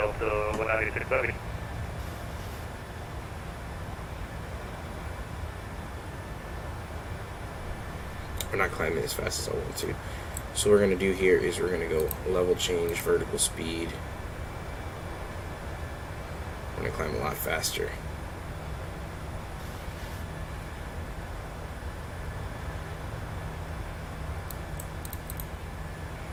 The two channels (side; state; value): both; identical; correlation 1.00